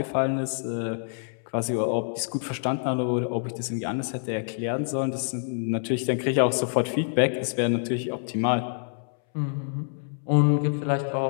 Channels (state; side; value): silent; right; 60 dB below the other